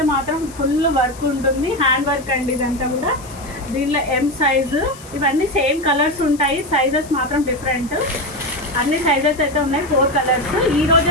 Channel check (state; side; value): noise; left; hiss, 19 dB below the sound